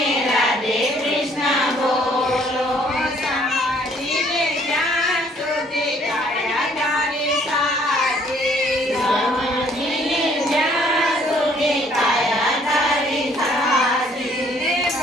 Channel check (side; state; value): both; normal; correlation 0.62